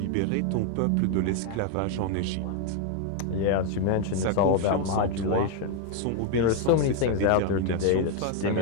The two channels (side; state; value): both; different; correlation 0.01